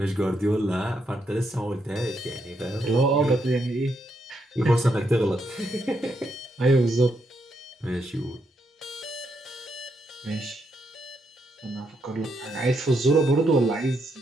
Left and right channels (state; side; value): normal; both; correlation 0.79